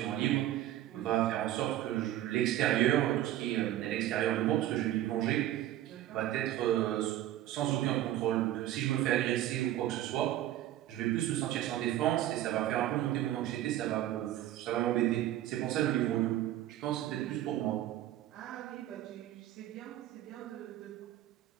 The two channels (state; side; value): quieter; left; 13.3 dB